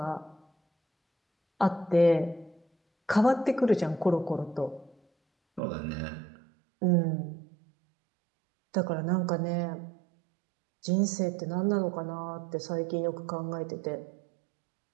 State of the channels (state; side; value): drops out; left; at 5.6 s